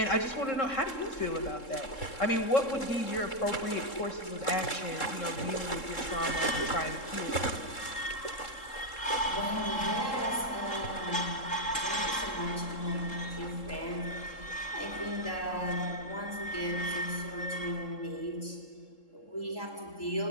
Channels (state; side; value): late; right; 3.7 ms